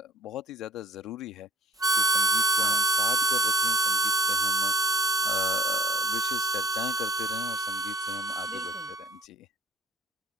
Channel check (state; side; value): normal; both; correlation 0.53